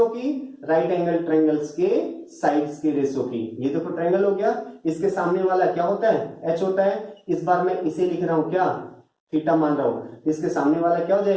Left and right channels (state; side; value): identical; both; correlation 1.00